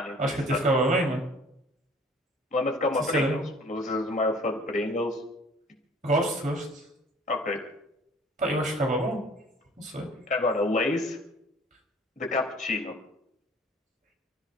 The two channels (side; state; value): both; normal; correlation 0.52